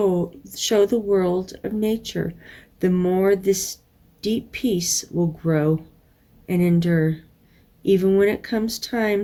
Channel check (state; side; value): identical; both; correlation 1.00